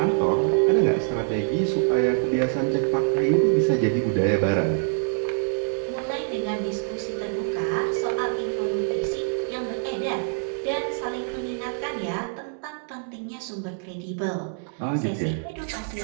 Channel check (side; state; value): left; silent; digital silence